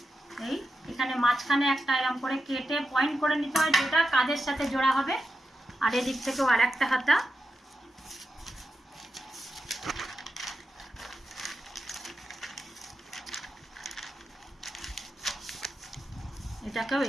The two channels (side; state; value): both; normal; correlation 0.89